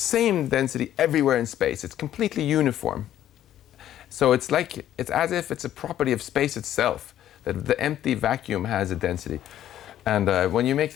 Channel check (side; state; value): right; quieter; 11.8 dB